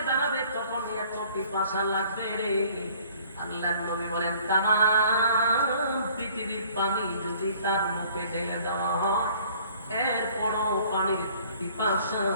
দাঁড়াবে, তখন এত পিপাসা লাগবে রে। আল্লাহর নবী বলেন, তামাম পৃথিবীর পানি যদি তার মুখে ঢেলে দেওয়া হয়, এরপরও পানির পিপাসা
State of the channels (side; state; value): both; inverted; correlation -0.55